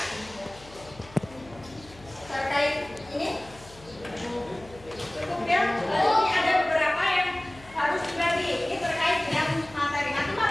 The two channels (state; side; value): noise; left; hum, 21 dB below the sound